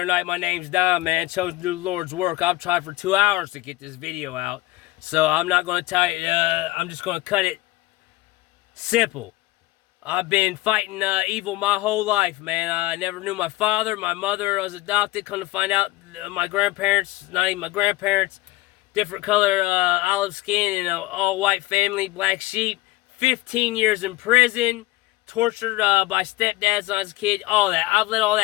tonight? My name's Don, man. Chosen to do the Lord's work. I've tried for 2 hours to get this video out, so I'm not going to I'm just going to cut it simple. I've been fighting evil my whole life, man. I never knew my father. My mother was adopted. Come to find out, my grandparents, not even my grandparents, different color, olive skin, and an all-white family, black sheep. 15 years in prison, tortured by stepdads when I was a kid, all that. I've let all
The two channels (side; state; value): right; quieter; 18.8 dB